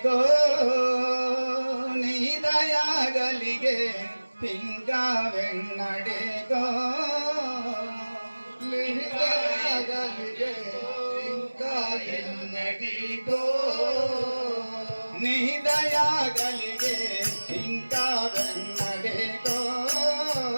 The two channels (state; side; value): inverted; both; correlation -1.00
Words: నీ దయాగలిగే ఇంకా వెన్నడేగో లిహితగలిగే ఇంకా ఎన్నటికో నీ దయాగలిగే ఇంకా వెన్నడేగో